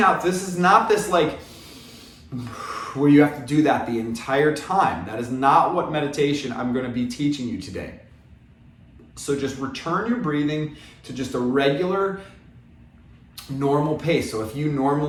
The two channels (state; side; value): identical; both; correlation 1.00